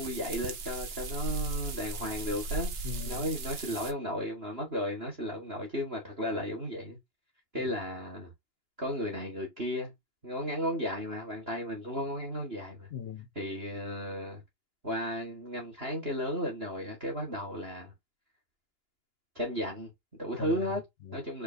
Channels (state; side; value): late; left; 2.9 ms